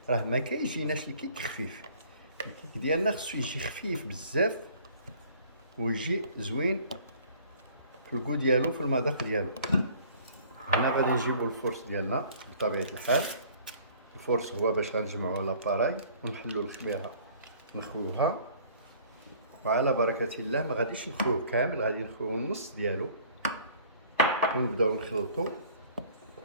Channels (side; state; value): both; inverted; correlation -0.53